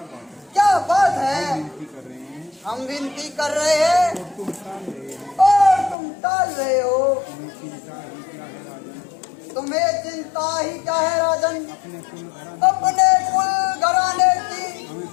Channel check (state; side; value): drops out; right; at 6.0 s